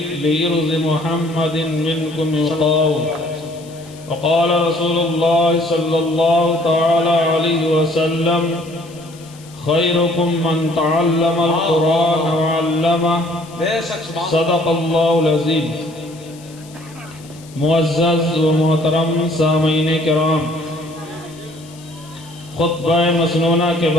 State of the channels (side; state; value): left; noise; hiss, 23 dB below the sound